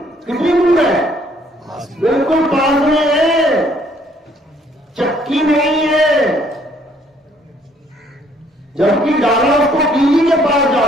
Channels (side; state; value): both; normal; correlation 0.64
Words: कितनी दूर है? बिल्कुल पास में है, चक्की नहीं है। जबकि दाना उसको कीली के पास